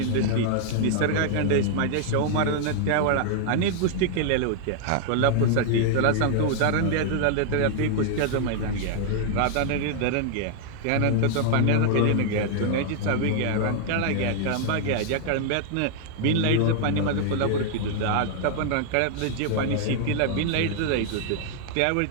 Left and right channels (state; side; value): different; both; correlation 0.00